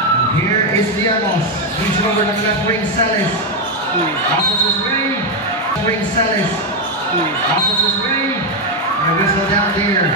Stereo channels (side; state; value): both; normal; correlation 0.05